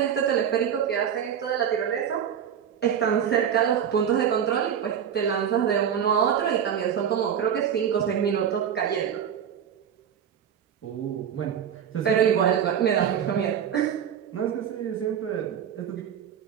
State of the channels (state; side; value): quieter; left; 8.6 dB